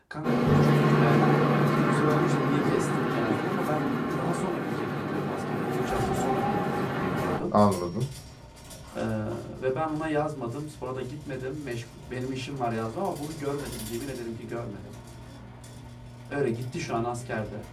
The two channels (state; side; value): identical; both; correlation 1.00